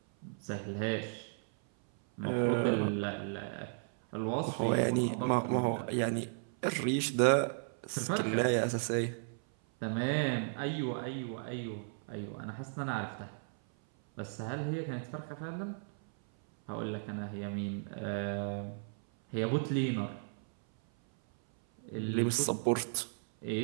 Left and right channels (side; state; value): left; silent; 55 dB below the other